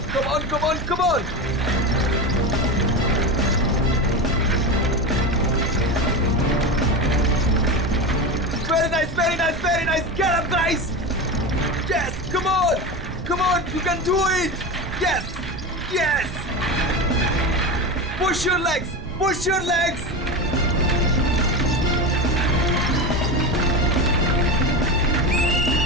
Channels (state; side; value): noise; right; rumble, 10 dB below the sound